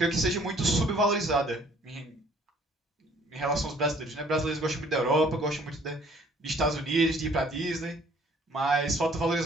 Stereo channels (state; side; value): normal; both; correlation 0.58